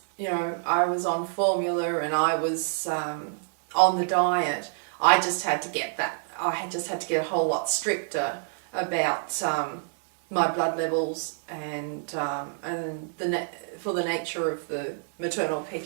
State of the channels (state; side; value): silent; left; digital silence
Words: I was on formula and I was on the diet. I just had to get a whole lot stricter about my blood levels and for the nature of the maternal